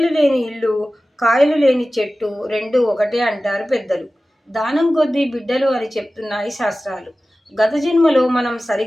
లేని ఇల్లు, కాయలు లేని చెట్టు రెండు ఒకటే అంటారు పెద్దలు. దానం కొద్దీ బిడ్డలు అని చెప్తున్నాయి శాస్త్రాలు. గత జన్మలో మనం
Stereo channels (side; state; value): both; normal; correlation 0.96